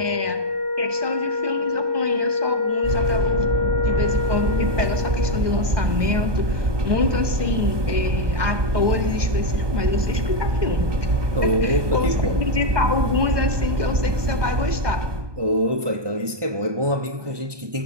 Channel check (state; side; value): late; left; 1.2 ms